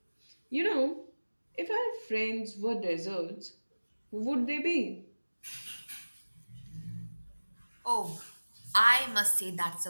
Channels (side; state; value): both; inverted; correlation -1.00